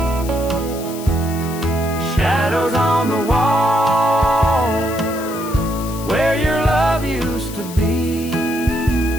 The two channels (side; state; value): left; noise; hiss, 14 dB below the sound